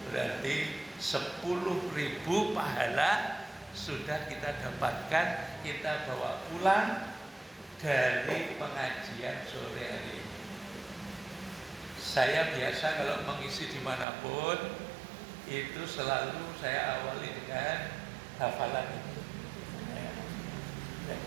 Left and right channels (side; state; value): left; drops out; at 14.1 s